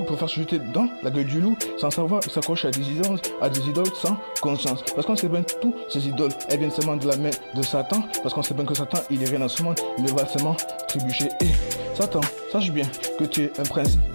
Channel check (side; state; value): both; inverted; correlation -1.00